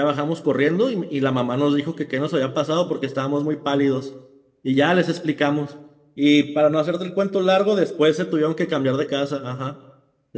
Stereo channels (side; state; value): both; identical; correlation 1.00